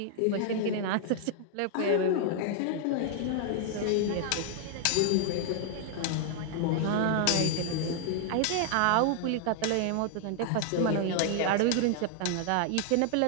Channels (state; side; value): different; both; correlation 0.00